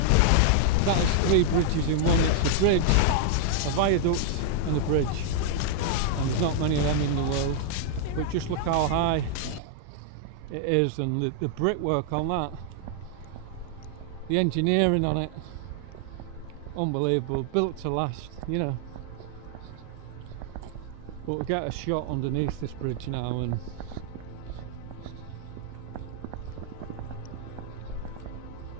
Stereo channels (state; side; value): different; both; correlation -0.01